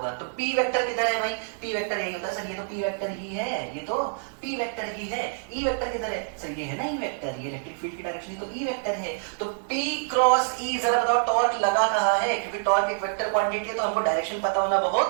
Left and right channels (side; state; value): left; silent; digital silence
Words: तो पी वेक्टर किधर है भाई, पी वेक्टर यही होता है सर, ये तो पी वेक्टर ही है, ये तो पी वेक्टर ही है। ई वेक्टर किधर है सर, ये है ना ई वेक्टर, ये इलेक्ट्रिक फील्ड की डायरेक्शन तो ई वेक्टर है। तो पी क्रॉस ई, जरा बताओ टॉर्क लगा कहाँ है, क्योंकि टॉर्क एक वेक्टर क्वांटिटी है तो हमको डायरेक्शन पता होना